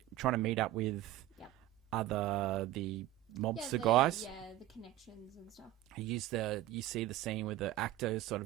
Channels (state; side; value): quieter; left; 14.7 dB